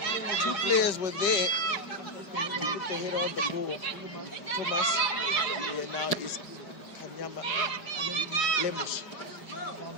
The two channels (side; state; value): right; late; 5.0 ms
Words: 2 players were there. Put the head on the ball. Khomas. Here now is Kanyama Lemush.